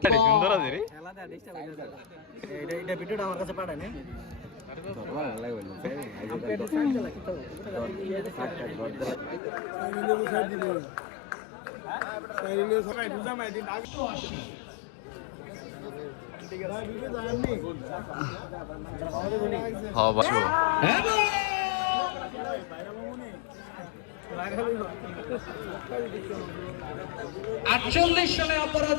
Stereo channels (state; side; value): drops out; right; at 9.4 s